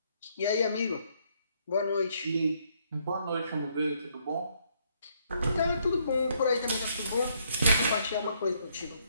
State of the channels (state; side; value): inverted; both; correlation -0.70